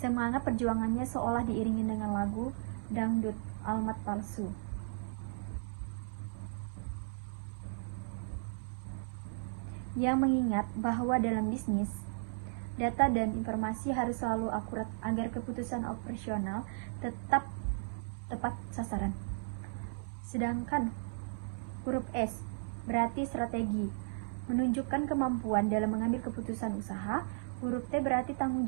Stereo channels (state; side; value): silent; left; 54 dB below the other